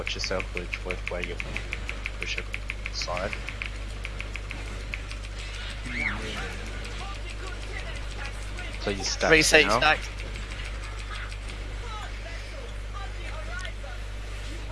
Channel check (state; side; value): identical; both; correlation 1.00